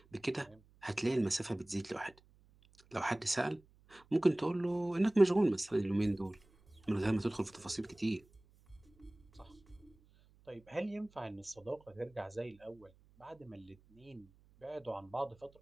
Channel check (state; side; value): noise; right; hum, 29 dB below the sound